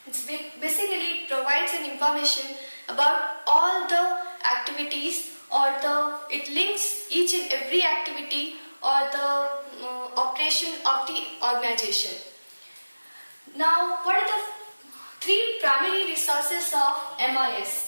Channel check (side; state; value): both; inverted; correlation -1.00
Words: Basically, it provides an information about all the activities it links each and every activity or the operation of the organization. Now, what are the three primary resources of